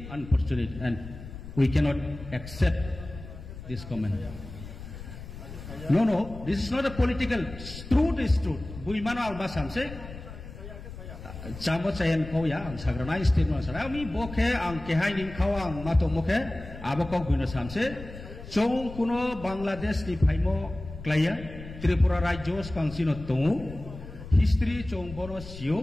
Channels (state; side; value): noise; left; rumble, 13 dB below the sound